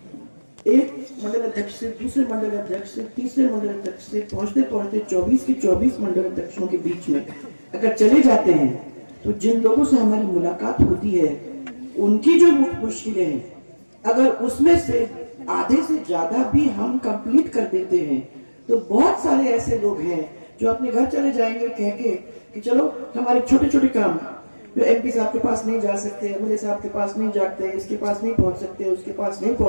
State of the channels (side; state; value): both; inverted; correlation -1.00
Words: एक मंडल अध्यक्ष से दूसरे मंडल अध्यक्ष से तीसरे मंडल अध्यक्ष से पहुंचते पहुंचते 24 के 24 मंडल अध्यक्षों के बीच में अगर चले जाते हैं, तो जिन लोगों से हमारी मुलाकात होती है उनकी जो मुश्किलें हैं, अगर उसमें से आधे से ज्यादा भी हम कंप्लीट कर देते हैं, तो बहुत सारे ऐसे लोग हैं जो अपने घर चले जाएंगे कह के कि चलो हमारे छोटे छोटे काम जो एमपी साहब के पास नहीं जा सकते, एमएलए साहब के पास नहीं जाते, इसके पास नहीं पहुंच सकते, उसके पास नहीं